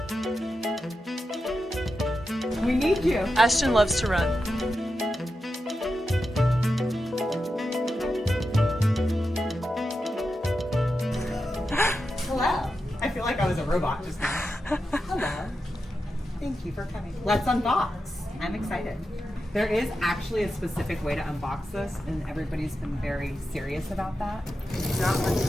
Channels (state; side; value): normal; both; correlation 0.89